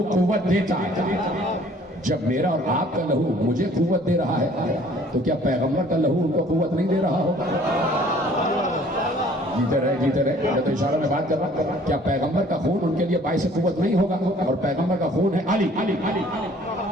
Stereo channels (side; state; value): both; normal; correlation 0.55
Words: قوت دیتا ہے۔ جب میرا اور آپ کا لہو مجھے قوت دے رہا ہے تو کیا پیغمبر کا لہو ان کو قوت نہیں دے رہا ہوگا؟ جیتے رہے میں تو اشارہ میں بات کر رہا ہوں، کیا پیغمبر کا خون ان کے لیے باعث قوت نہیں ہوگا؟ اور پیغمبر کا خون ہے علی،